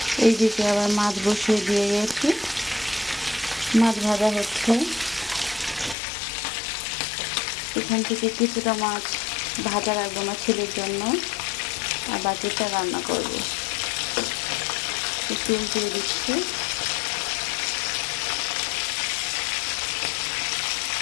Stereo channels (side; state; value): right; drops out; at 6.0 s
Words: এইদিকে আবার মাছ বসিয়ে দিয়ে গেছি। মাছ ভাজা হচ্ছে। এখান থেকে কিছুটা মাছ ভাজা রাখবো আমার ছেলের জন্য, আর বাকিটা রান্না করব। একটু উল্টে দিচ্ছি।